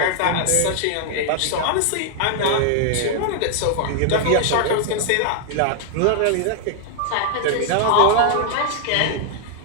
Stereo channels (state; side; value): different; both; correlation 0.00